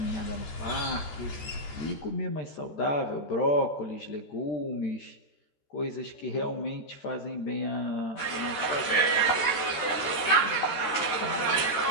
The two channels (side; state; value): right; late; 13 ms